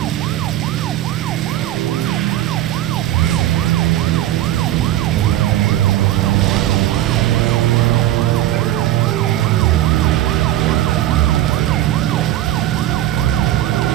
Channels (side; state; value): left; quieter; 13.6 dB